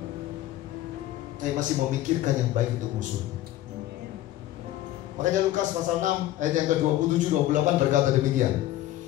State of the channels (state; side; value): quieter; right; 14.4 dB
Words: Saya masih memikirkan yang baik untuk musuh. Makanya Lukas pasal 6 ayat yang ke-27-28 berkata demikian.